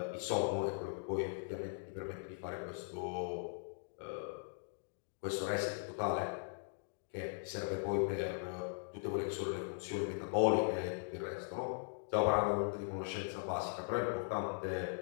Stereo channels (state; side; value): silent; right; digital silence